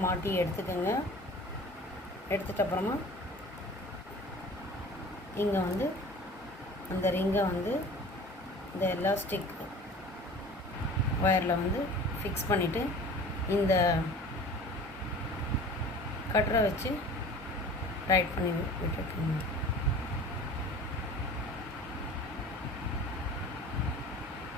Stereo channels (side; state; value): both; normal; correlation 0.42